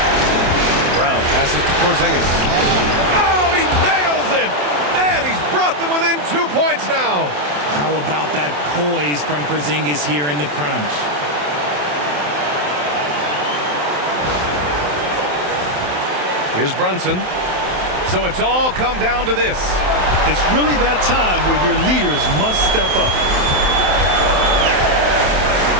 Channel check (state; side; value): late; left; 27 ms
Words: Brown passes to Porzingis. Oh, he nails it! And he's brought them within 2 points now. How about that poise from Porzingis here in the crunch? Here's Brunson. So it's all come down to this. It's really that time where your leaders must step up.